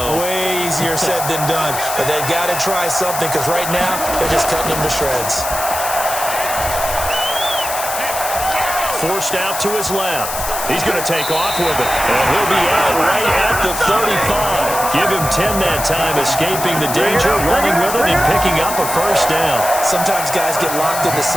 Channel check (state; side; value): noise; left; hiss, 6 dB below the sound